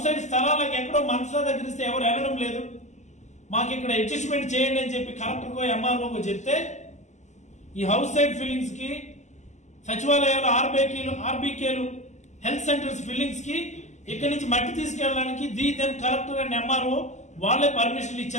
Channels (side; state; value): right; late; 0.34 ms